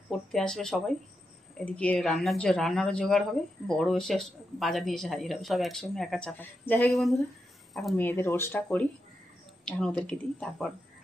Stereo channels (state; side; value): normal; both; correlation 0.86